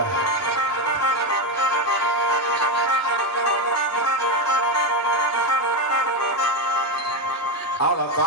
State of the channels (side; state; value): both; normal; correlation 0.12